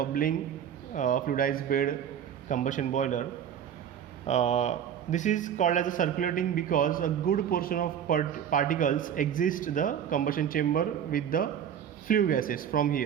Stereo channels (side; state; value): left; quieter; 9.0 dB